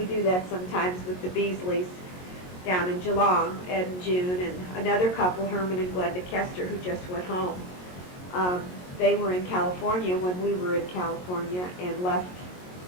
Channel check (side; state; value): right; late; 22 ms